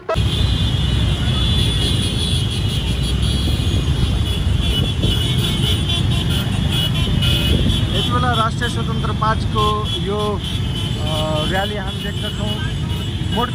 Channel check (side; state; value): both; identical; correlation 1.00